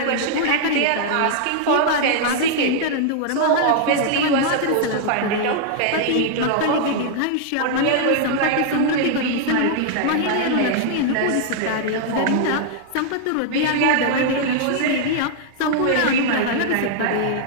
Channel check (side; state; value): both; different; correlation -0.01